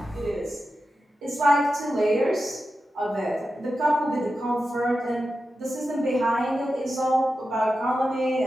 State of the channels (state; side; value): normal; both; correlation 0.91